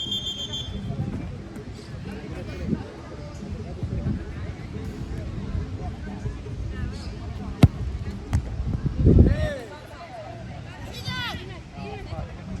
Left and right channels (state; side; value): identical; both; correlation 1.00